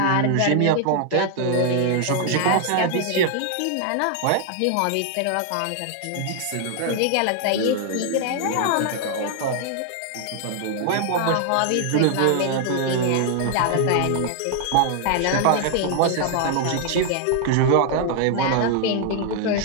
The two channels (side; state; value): both; different; correlation 0.00